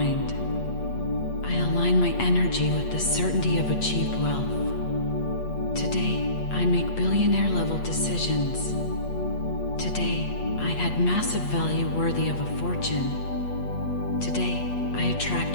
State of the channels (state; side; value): late; right; 8.4 ms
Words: I align my energy with the certainty of achieved wealth. Today, I make billionaire-level decisions. Today, I add massive value worthy of a fortune. Today, I attract